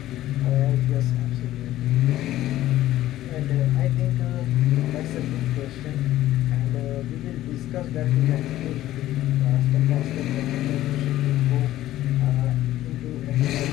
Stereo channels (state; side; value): quieter; right; 14.3 dB